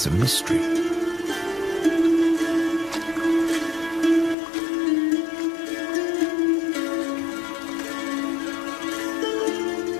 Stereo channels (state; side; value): drops out; right; at 4.4 s